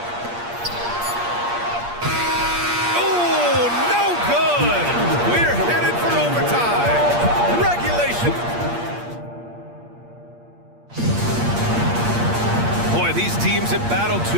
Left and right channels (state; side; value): late; left; 8.5 ms